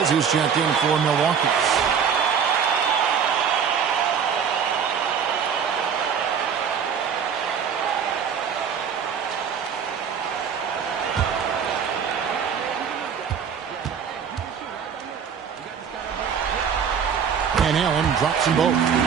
who's checked in for Milwaukee. Allen drops them both.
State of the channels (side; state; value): left; quieter; 7.2 dB